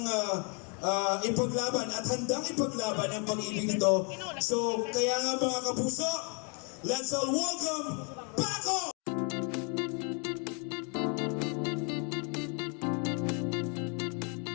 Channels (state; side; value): quieter; right; 36.5 dB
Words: ipaglaban at handang ipaglaban ang pag-ibig nito. So kaya nga mga kapuso, let's all welcome Paco!